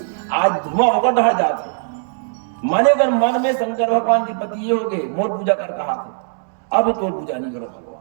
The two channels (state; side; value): silent; left; digital silence